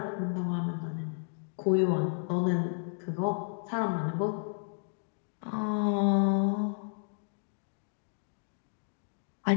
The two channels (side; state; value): right; silent; digital silence